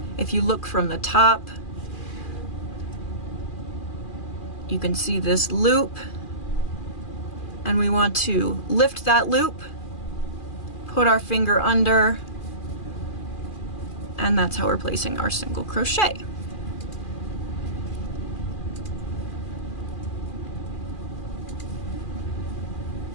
If you look from the top, you can see this loop, and we want to lift that loop, put our finger under, and that's how we're placing our single crochet.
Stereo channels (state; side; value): late; right; 2.4 ms